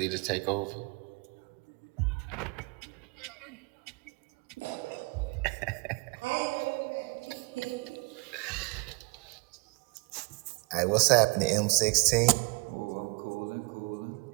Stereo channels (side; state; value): left; quieter; 28.9 dB